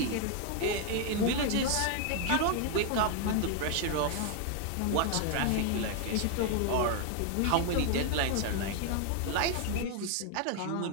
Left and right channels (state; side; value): different; both; correlation 0.01